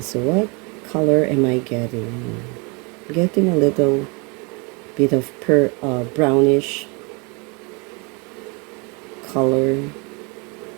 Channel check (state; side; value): quieter; left; 30.9 dB